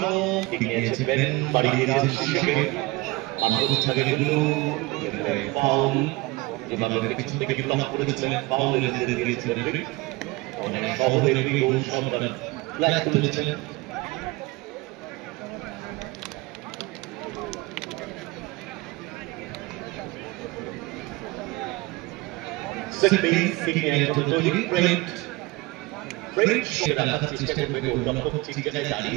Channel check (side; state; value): left; quieter; 22.0 dB